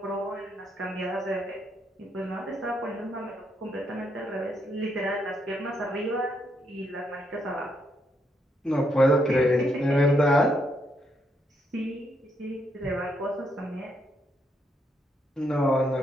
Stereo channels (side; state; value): both; normal; correlation 0.77